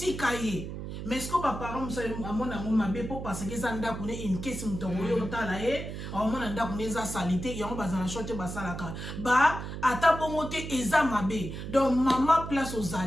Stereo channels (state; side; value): noise; right; hum, 7 dB below the sound